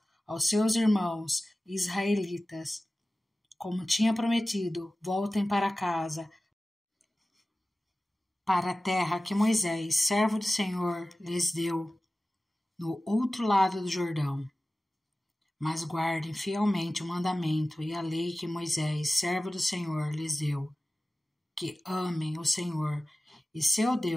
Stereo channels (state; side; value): normal; both; correlation 0.96